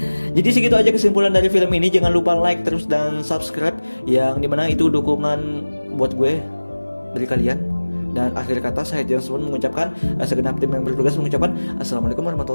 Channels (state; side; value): inverted; both; correlation -1.00